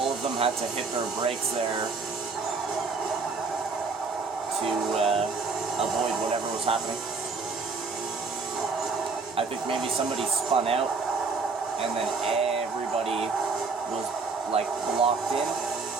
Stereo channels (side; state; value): left; quieter; 4.4 dB